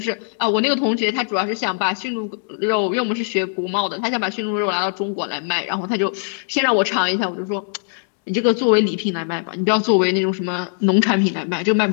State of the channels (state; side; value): silent; right; 61 dB below the other